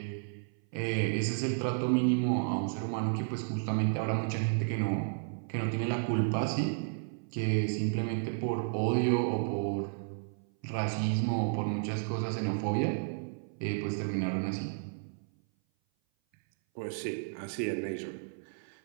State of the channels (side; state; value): left; silent; 56 dB below the other